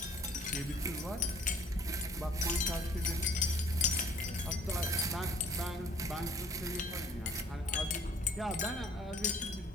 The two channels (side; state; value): both; normal; correlation 0.55